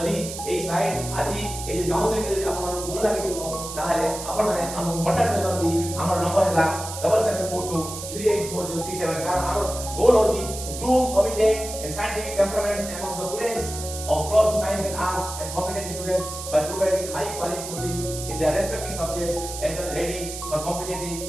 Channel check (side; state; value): right; noise; hiss, 9 dB below the sound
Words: एई स्लाइड आजि एई जे काउंसलिंग रे आपन भल लागिथिबो ताहाले आपन माने हम कांटेक्ट करबी हमर नंबर हला 7742384067 कारण हमर गोल होची groom committed and scientific temperaments among the students of close to science and arts and competent students by providing high quality coaching in their respective subjects and are ready for competitive